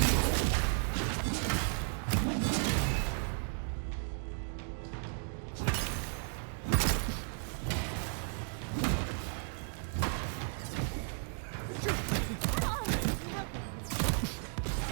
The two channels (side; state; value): left; silent; 55 dB below the other